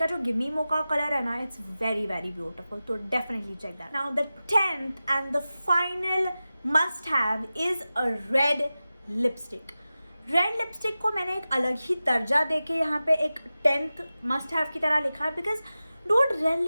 जो Gimme Mocha color है ना, it's very beautiful. So definitely check that. Now the 10th and the final must have is a red lipstick. Red lipstick को मैंने एक अलग ही दर्जा देके यहाँ पे एक 10th मस्ट हैव की तरह लिखा है बिकॉज डूड रेड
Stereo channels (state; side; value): inverted; both; correlation -0.95